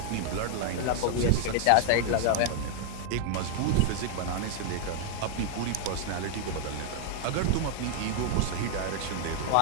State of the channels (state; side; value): different; both; correlation 0.00